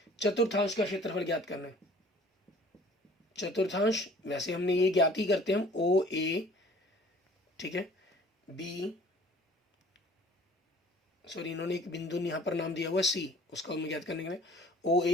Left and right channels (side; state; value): both; normal; correlation 0.51